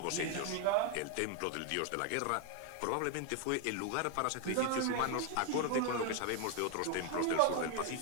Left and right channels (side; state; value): both; different; correlation 0.01